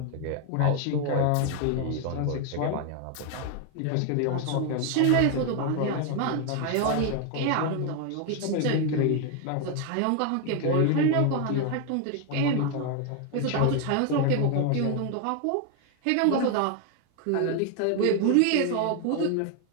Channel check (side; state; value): both; different; correlation 0.01